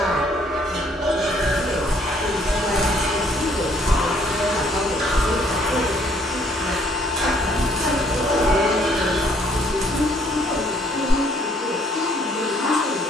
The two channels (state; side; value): normal; both; correlation 0.64